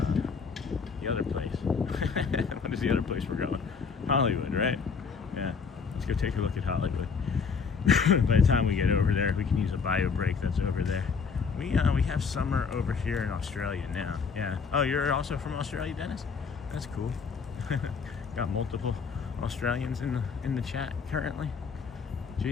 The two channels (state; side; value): quieter; right; 5.6 dB